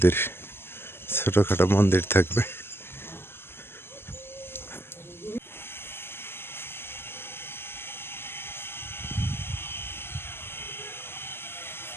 ছোটোখাটো মন্দির থাকবে।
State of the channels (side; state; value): right; late; 0.11 ms